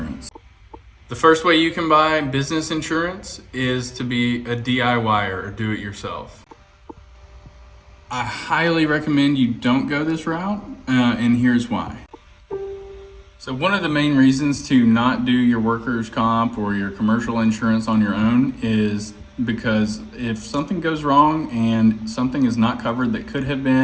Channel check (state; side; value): identical; both; correlation 1.00